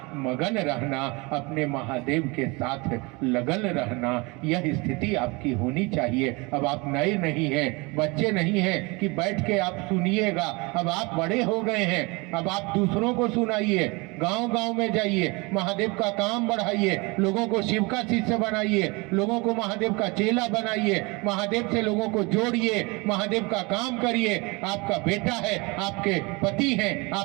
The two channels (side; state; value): left; quieter; 26.8 dB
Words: मगन रहना, अपने महादेव के साथ लगन रहना, यह स्थिति आपकी होनी चाहिए। अब आप नए नहीं है, बच्चे नहीं हैं कि बैठ के आप सुनिएगा। अब आप बड़े हो गए हैं, अब आप दूसरों को सुनाइए, गांव गांव में जाइए, महादेव का काम बढ़ाइए, लोगों को शिव का शिष्य बनाइए, लोगों को महादेव का चेला बनाइए, महादेव से लोगों को जोड़िए, महादेव का काम करिए। आपका बेटा है, आपके पति हैं,